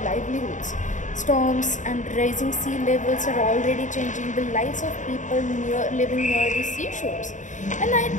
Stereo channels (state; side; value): late; right; 0.36 ms